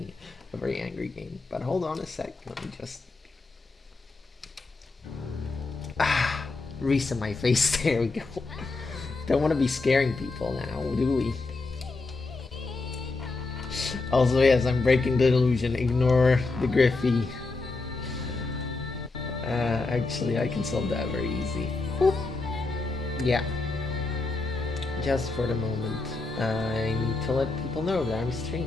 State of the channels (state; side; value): quieter; right; 3.6 dB